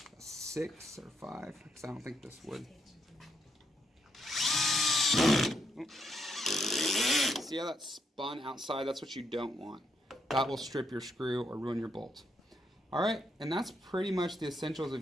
6 or 5 because I don't think this would. Oh. See how that spun outside? That's what you don't want. That will strip your screw or ruin your bolt. Alright, and that's pretty much the essentials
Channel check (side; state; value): both; normal; correlation 0.78